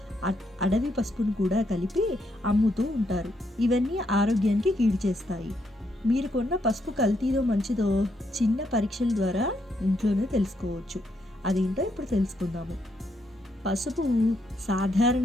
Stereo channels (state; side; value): normal; both; correlation 0.77